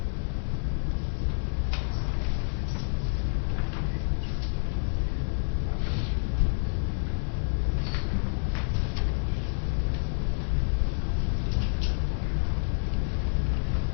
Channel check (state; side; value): silent; right; 59 dB below the other